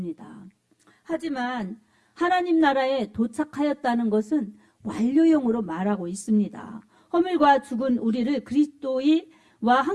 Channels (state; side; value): identical; both; correlation 1.00